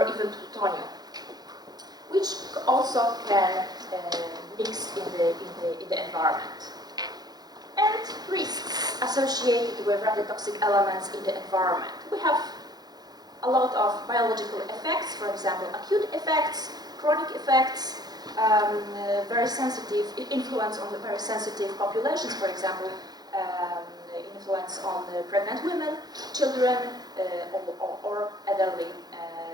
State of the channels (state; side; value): late; left; 0.19 ms